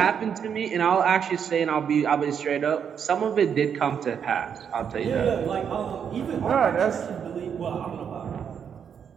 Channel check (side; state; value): left; quieter; 7.6 dB